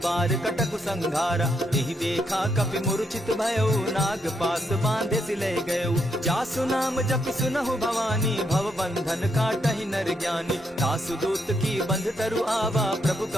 कटकु संघारा। तेहि देखा कपि मूर्छित भयउ, नाग पास बांधे सिले गयउ। जासु नाम जपि सुनहु भवानी, भव बंधन काटहि नर ज्ञानी। तासु दूत की बंध तरु आवा, प्रभु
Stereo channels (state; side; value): normal; both; correlation 0.78